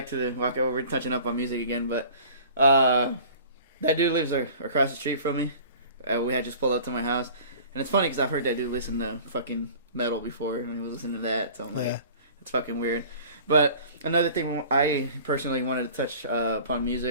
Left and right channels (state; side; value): inverted; both; correlation -0.45